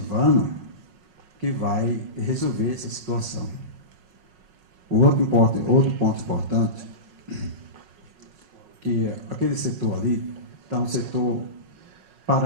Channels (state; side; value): late; left; 5.4 ms